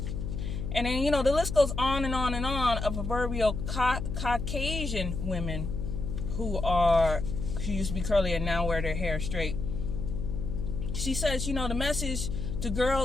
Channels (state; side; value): noise; left; hum, 4 dB below the sound